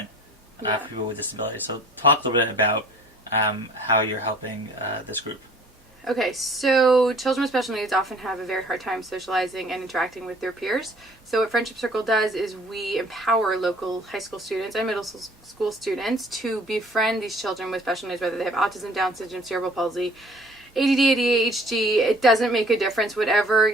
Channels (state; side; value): normal; both; correlation 0.53